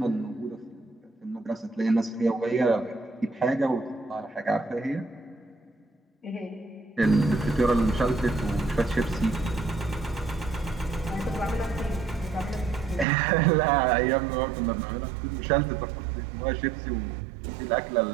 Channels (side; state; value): left; drops out; at 13.1 s